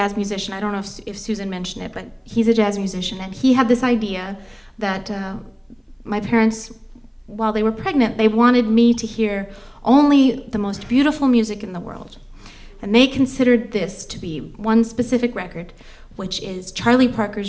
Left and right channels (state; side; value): identical; both; correlation 1.00